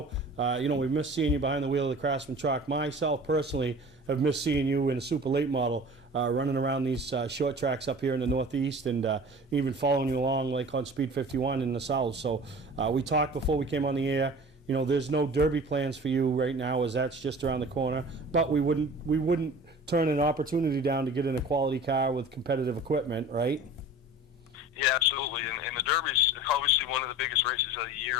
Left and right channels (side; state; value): both; normal; correlation 0.41